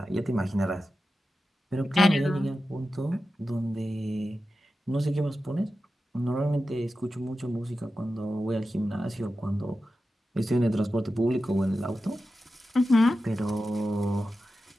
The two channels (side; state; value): both; normal; correlation 0.92